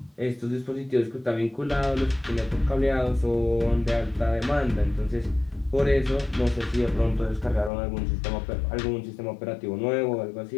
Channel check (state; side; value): drops out; right; at 7.7 s